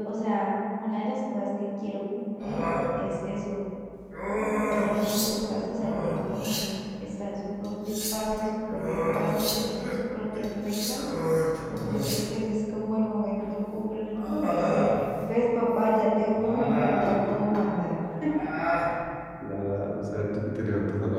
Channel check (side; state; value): both; identical; correlation 1.00